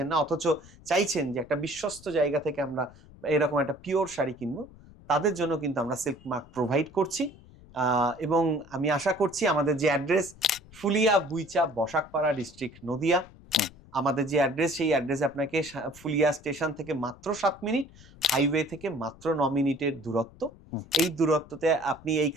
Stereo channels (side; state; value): left; noise; rumble, 22 dB below the sound